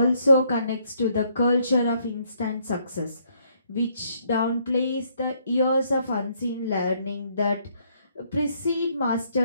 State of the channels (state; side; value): inverted; both; correlation -0.69